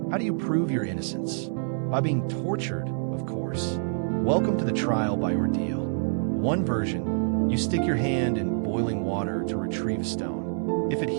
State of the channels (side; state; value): left; silent; 60 dB below the other